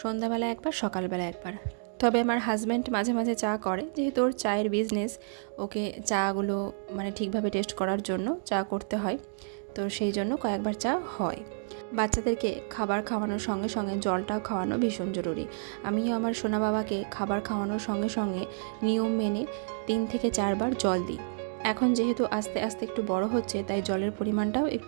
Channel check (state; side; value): silent; left; digital silence